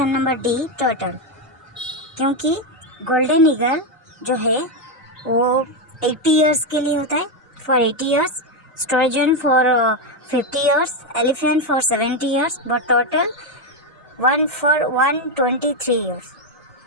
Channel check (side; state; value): both; normal; correlation 0.06